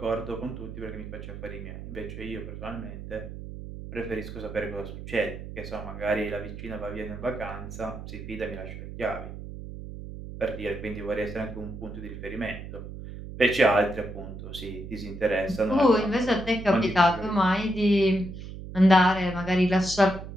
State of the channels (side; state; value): right; noise; hum, 10 dB below the sound